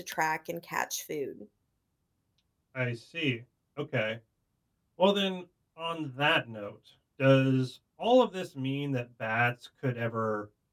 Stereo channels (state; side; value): identical; both; correlation 1.00